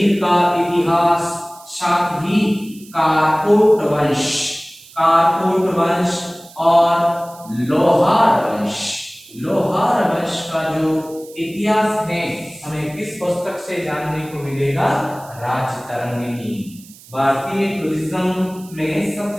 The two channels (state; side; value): noise; right; hiss, 22 dB below the sound